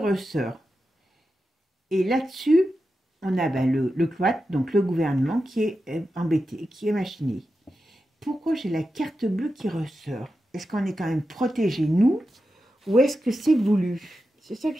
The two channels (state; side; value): normal; both; correlation 0.90